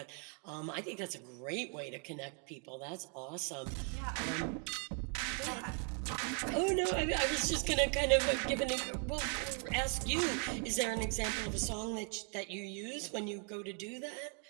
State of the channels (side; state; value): left; quieter; 37.5 dB